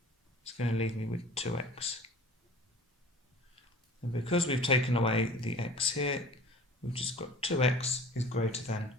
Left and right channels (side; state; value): both; normal; correlation 0.44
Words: is going to leave me with 2x. And because we've taken away the x here, we've just got 2x is greater than